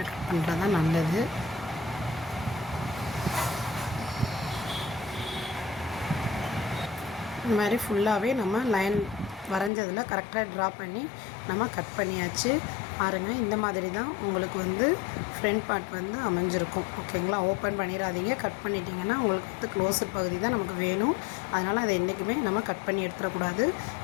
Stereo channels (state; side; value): drops out; right; at 9.7 s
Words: கட் பண்ணுறது தான் நல்லது. இந்த மாதிரி ஃபுல்லாகவே நம்ம லைன் வரைஞ்சதில் கரெக்டாக ட்ரா பண்ணி நம்ம கட் பண்ணியாச்சு. பாருங்கள், இந்த மாதிரி தான் உங்களுக்கு வந்து ஃப்ரண்ட் பார்ட் வந்து அமைஞ்சிருக்கும். ஓகேங்களா, ஓப்பன் பண்ணிடாதீங்க. கட் பண்ணிட்டீங்கன்னா உங்களுக்கு வந்து க்ளோஸர் பகுதி தான் நமக்கு வேணும். அதனால் அதை என்றைக்குமே நம்ம கட் பண்ணி எடுத்துடக்கூடாது.